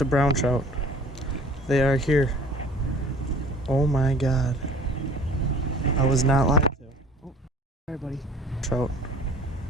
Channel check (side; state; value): both; normal; correlation 0.49